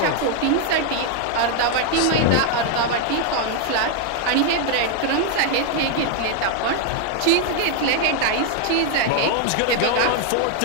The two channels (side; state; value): both; different; correlation 0.00